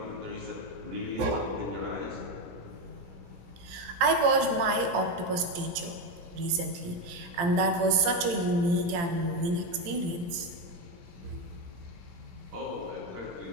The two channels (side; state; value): left; late; 17 ms